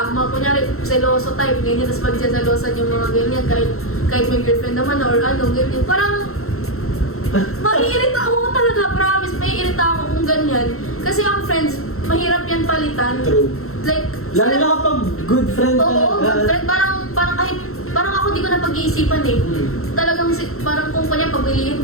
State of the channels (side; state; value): right; late; 0.63 ms